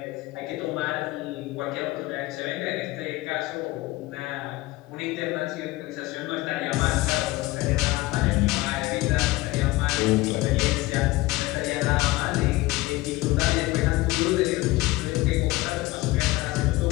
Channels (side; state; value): right; quieter; 19.5 dB